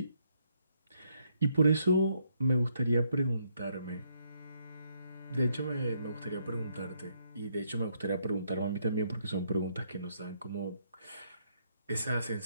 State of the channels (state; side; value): inverted; both; correlation -0.73